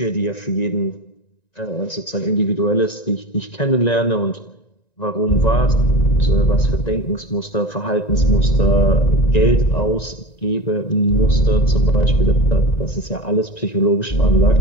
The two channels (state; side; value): late; right; 1.9 ms